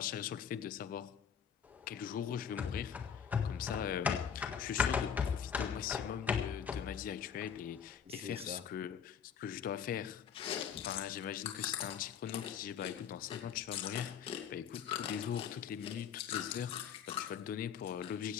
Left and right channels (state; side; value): quieter; right; 7.8 dB